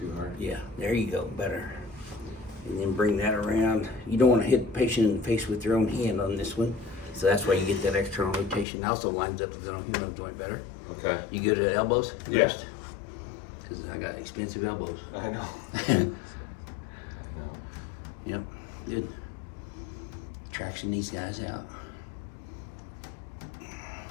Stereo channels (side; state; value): right; drops out; at 8.7 s